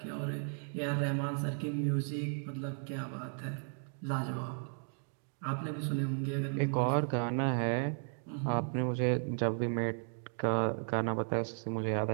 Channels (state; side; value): silent; left; 54 dB below the other